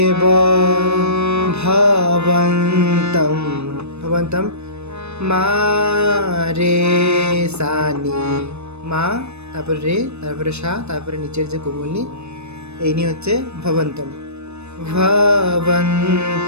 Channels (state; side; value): late; left; 0.81 ms